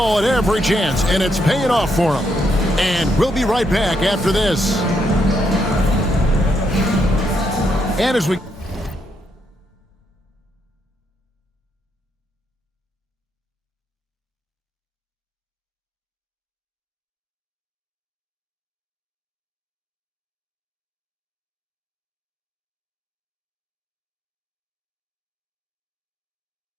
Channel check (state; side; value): normal; both; correlation 0.77